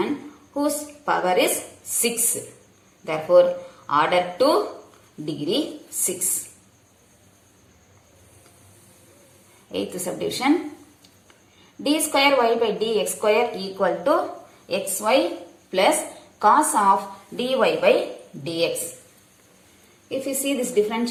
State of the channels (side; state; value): both; identical; correlation 1.00